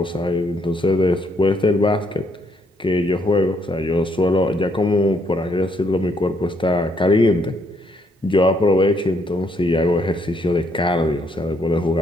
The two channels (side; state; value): both; normal; correlation 0.71